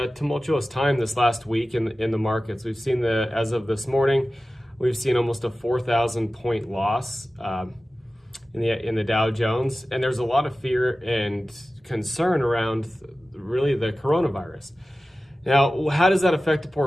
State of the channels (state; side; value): normal; both; correlation 0.95